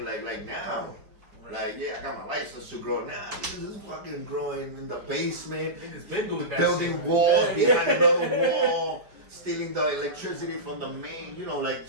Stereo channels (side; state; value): left; late; 4.7 ms